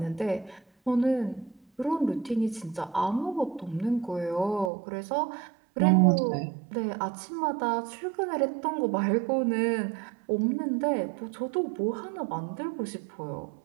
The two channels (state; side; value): drops out; left; at 4.7 s